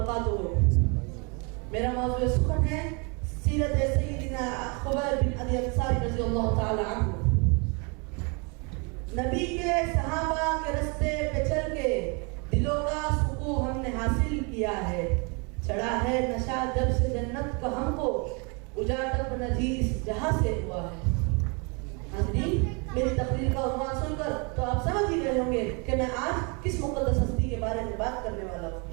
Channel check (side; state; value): left; quieter; 32.5 dB